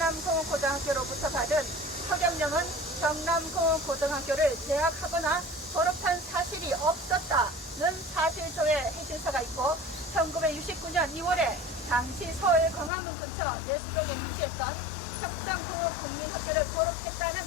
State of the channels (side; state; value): right; drops out; at 12.9 s